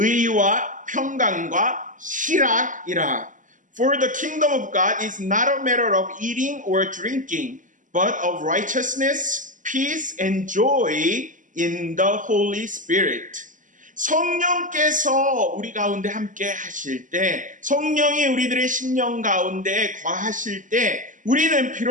평강과 희락이라. For the kingdom of God is not a matter of eating or drinking, but of righteousness, peace, and joy in the Holy Spirit. 성령께서 우리 가운데 함께 하실 때, 성령이 우리들의 심령 가운데 거하실 때, 우리는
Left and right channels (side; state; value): left; late; 0.37 ms